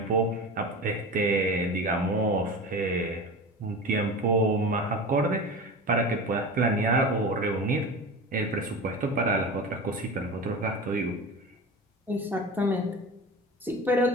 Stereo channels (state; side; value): normal; both; correlation 0.30